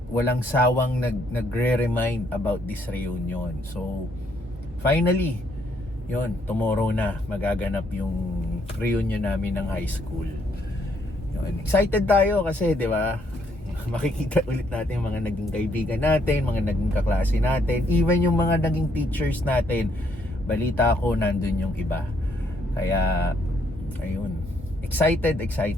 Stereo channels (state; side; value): normal; both; correlation 0.71